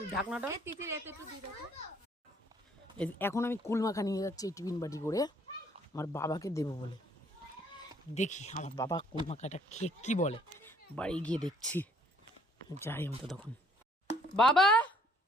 ঢাকনাটা এখন আমি কুল মাখা নিয়ে যাচ্ছি এই টিফিন বাটি করে আমার বাবাকে দেবো বলে দেখি আমার বাবা কুল মাখাটা খেয়ে কি বলে বাড়ি গিয়ে দেখছি যাই আমি তো তখন বাবা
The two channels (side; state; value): both; normal; correlation 0.62